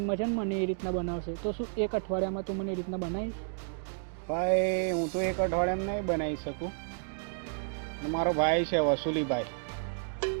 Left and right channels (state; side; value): silent; left; digital silence